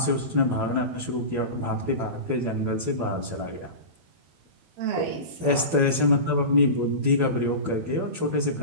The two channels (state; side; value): late; left; 12 ms